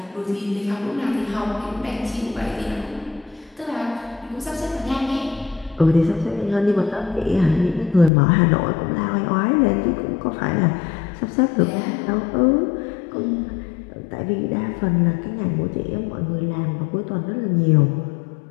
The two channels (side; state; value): right; drops out; at 8.1 s